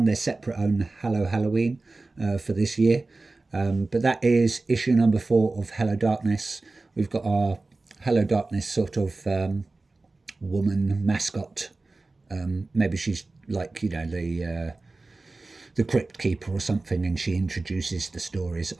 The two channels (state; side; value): quieter; left; 3.4 dB